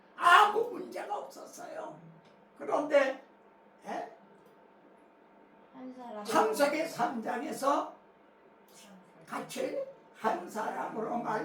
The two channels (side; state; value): both; identical; correlation 1.00